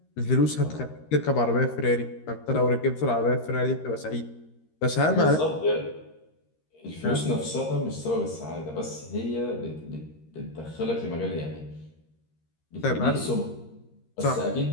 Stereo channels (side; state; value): right; late; 13 ms